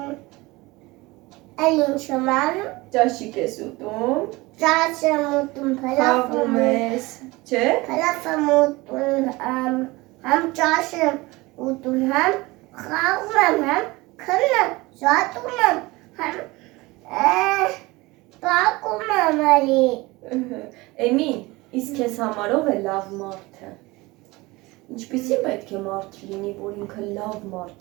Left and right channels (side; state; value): left; quieter; 22.0 dB